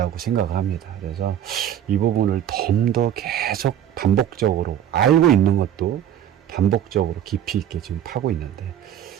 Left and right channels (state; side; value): quieter; left; 10.3 dB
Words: 생각을 합니다. 그래서 이 부분을 좀 더 계속 반복적으로 알고 있는 것도 반복적으로 깊이 있게 지금 파고 있는데